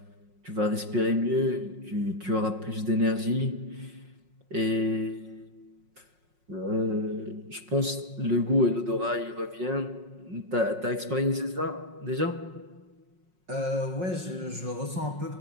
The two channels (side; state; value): left; late; 5.5 ms